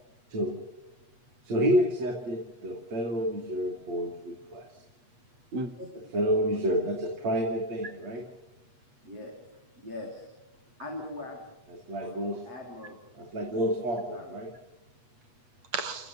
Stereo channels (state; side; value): late; left; 8.3 ms